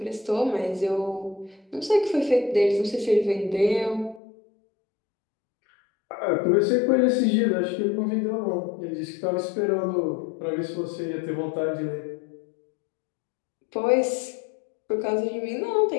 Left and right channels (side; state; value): right; drops out; at 4.2 s